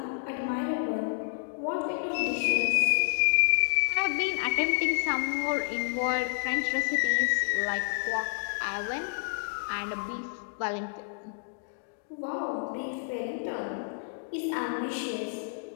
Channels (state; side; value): silent; right; digital silence